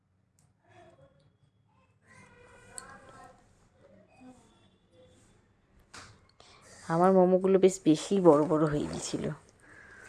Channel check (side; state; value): both; identical; correlation 1.00